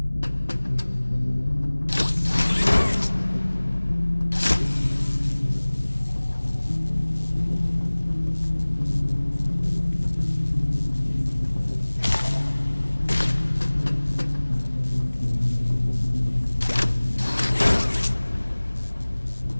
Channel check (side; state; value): both; inverted; correlation -1.00